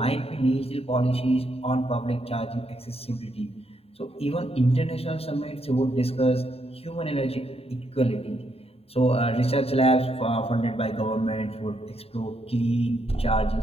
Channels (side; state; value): right; late; 0.29 ms